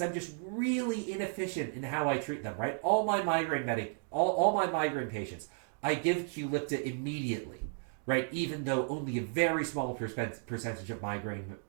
I'm just really inefficient in how I treat them, right? All my migraine patients, I give Qulipta immediately, right? Even though only a very small percentage of migraine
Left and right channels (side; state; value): left; silent; 55 dB below the other